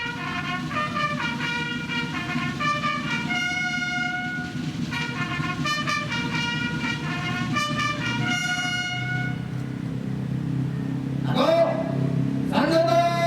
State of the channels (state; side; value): identical; both; correlation 1.00